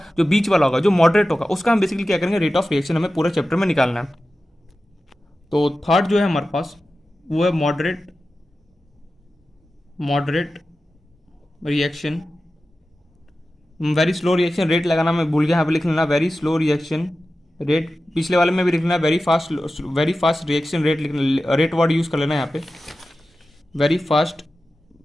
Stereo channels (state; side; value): normal; both; correlation 0.94